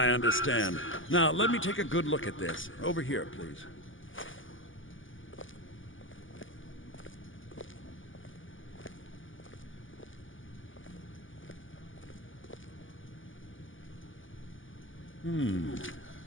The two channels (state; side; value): late; right; 0.57 ms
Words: understand. Now, let me take a good look at this. Over here, please.